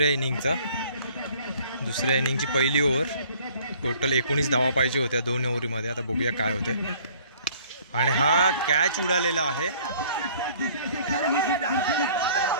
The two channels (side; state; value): both; inverted; correlation -0.55